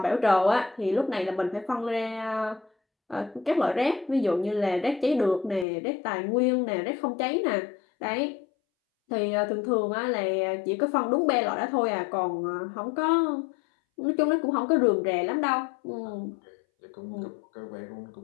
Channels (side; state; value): right; drops out; at 5.7 s